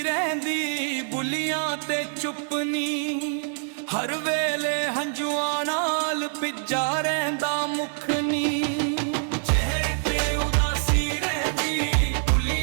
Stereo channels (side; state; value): left; silent; 61 dB below the other